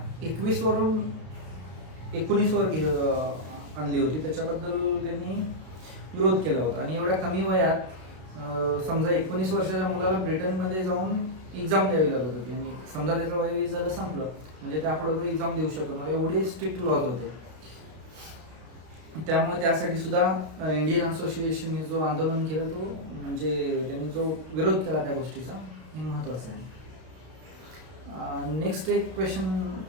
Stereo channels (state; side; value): late; left; 32 ms